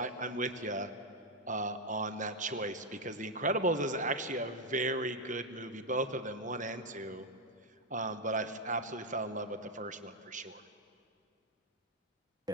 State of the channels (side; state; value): both; normal; correlation 0.01